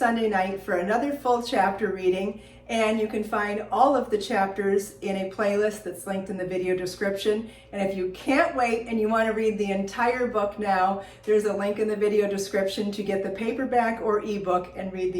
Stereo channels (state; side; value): identical; both; correlation 1.00